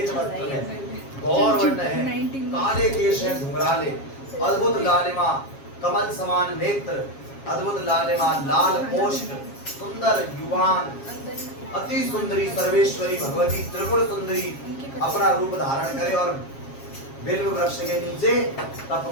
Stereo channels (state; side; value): late; right; 7.4 ms